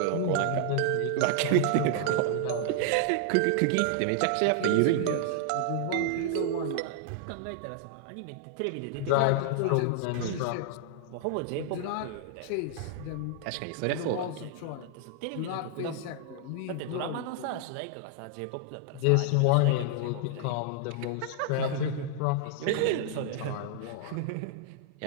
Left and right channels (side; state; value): both; different; correlation -0.01